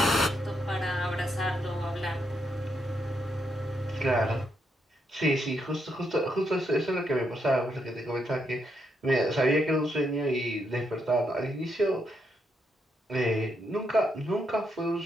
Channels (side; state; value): both; normal; correlation 0.79